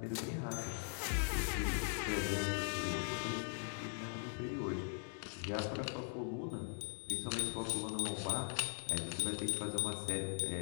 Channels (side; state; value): right; silent; 51 dB below the other